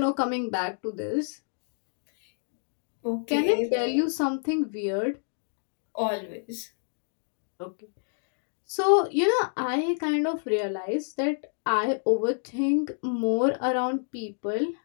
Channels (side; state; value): right; silent; digital silence